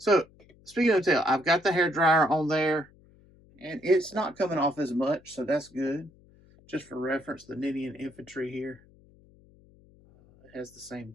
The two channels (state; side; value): noise; left; hum, 27 dB below the sound